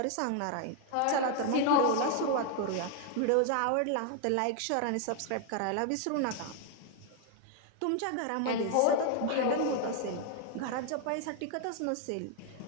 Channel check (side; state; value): both; different; correlation 0.00